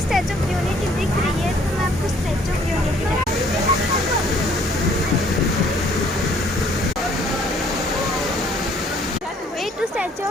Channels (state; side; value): normal; both; correlation 0.61